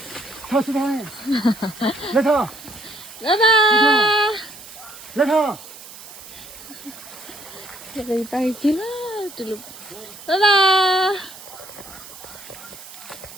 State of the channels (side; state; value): right; noise; hiss, 16 dB below the sound